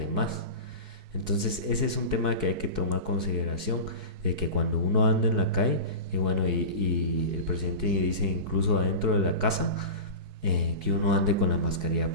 Entonces, ese es un tema que hay que tomar consideración, de que cuando uno anda en la calle, y el presidente dice incluso adentro de la casa, que uno ande con la mascarilla,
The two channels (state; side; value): late; left; 4.6 ms